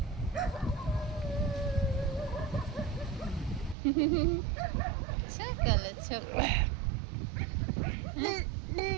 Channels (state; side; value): drops out; left; at 3.8 s